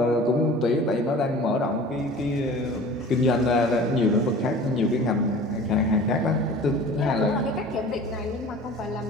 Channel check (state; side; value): normal; both; correlation 0.42